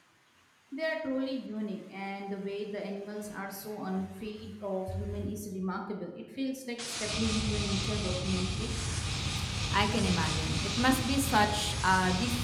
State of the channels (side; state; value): both; identical; correlation 1.00